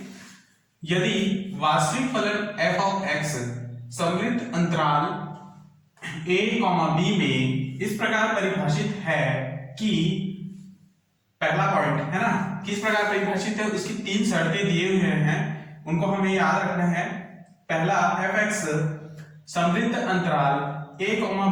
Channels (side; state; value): both; identical; correlation 1.00